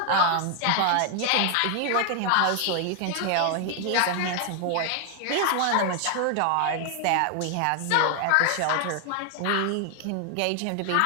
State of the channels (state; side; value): different; both; correlation 0.00